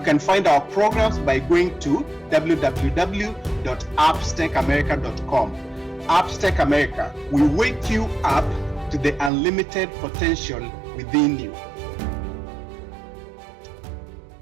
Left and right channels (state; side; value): drops out; left; at 9.3 s